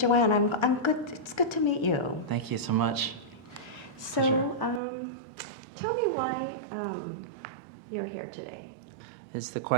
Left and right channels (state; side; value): drops out; left; at 4.8 s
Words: I'm good. It's good to meet you. Thank you so much. So, Pleasure. tell me why you're here today. It's the